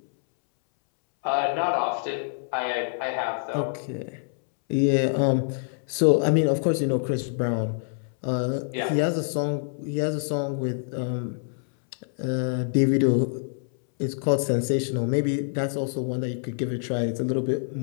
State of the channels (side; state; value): right; silent; 61 dB below the other